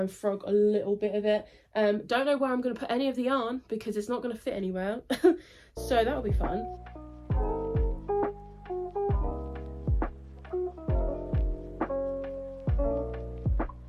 and frog a little bit of it. Don't know where I'm gonna put any of the yarn because it's not gonna fit anywhere. So that'll be fun.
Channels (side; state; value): both; identical; correlation 1.00